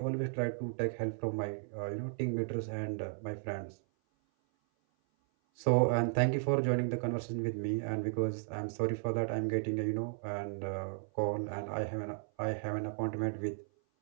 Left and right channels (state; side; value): silent; left; 55 dB below the other